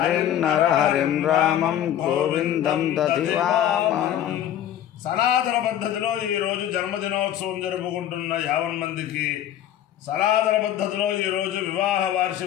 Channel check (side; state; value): right; quieter; 11.0 dB